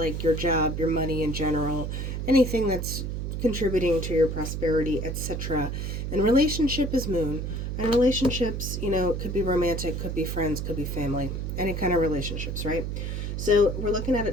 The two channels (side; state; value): right; noise; hum, 3 dB below the sound